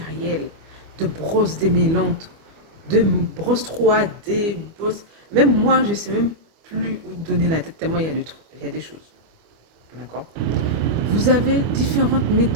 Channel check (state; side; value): late; left; 25 ms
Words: de brosses démêlantes, de brosses 3D, brosses... Même moi, je ne sais même plus où donner la tête, tellement il y a des choses. D'accord? Vous avez différentes